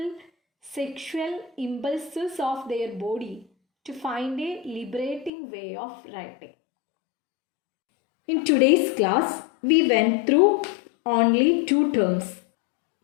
sexual impulses of their body to find a liberating way of writing. In today's class, we went through only two terms.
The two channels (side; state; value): right; drops out; at 5.3 s